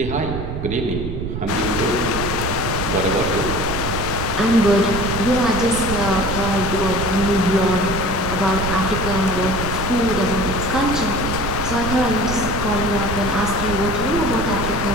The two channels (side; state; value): right; noise; rumble, 5 dB below the sound